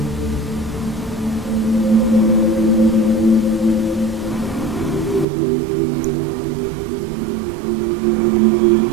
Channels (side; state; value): left; drops out; at 5.2 s